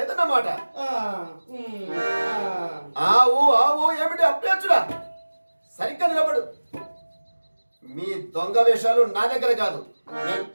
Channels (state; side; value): inverted; both; correlation -1.00